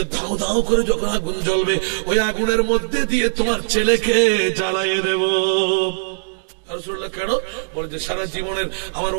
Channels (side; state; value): left; silent; 65 dB below the other